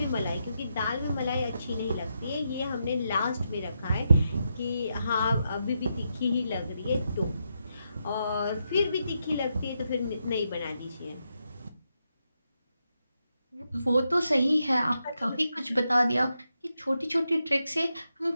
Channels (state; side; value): inverted; both; correlation -0.84